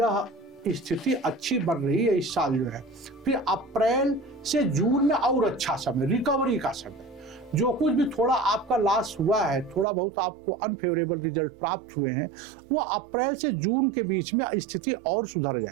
स्थिति अच्छी बन रही है इस साल जो है। फिर अप्रैल से जून में और अच्छा समय, रिकवरी का समय। जो कुछ भी थोड़ा आपका लॉस हुआ है, थोड़ा बहुत आपको अनफेवरेबल रिजल्ट प्राप्त हुए हैं, वो अप्रैल से जून के बीच में स्थिति और सुधर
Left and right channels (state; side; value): drops out; left; at 9.9 s